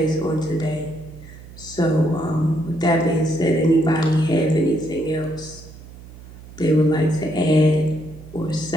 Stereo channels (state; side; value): noise; right; hum, 18 dB below the sound